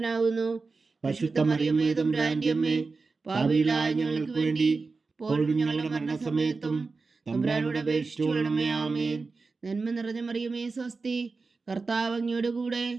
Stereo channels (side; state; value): left; quieter; 4.2 dB